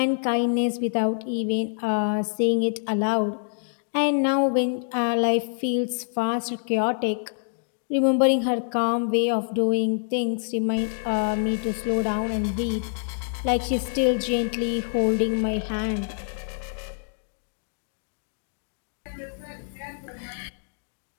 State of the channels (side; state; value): right; silent; digital silence